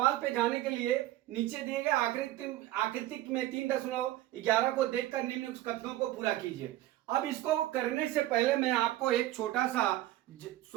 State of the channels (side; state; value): left; quieter; 15.1 dB